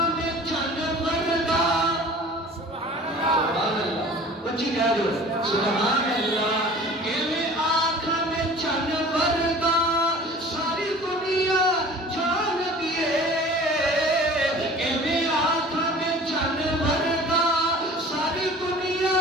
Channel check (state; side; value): normal; both; correlation 0.44